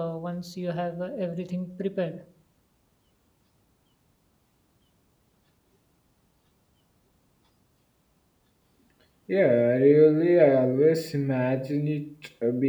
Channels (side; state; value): both; identical; correlation 1.00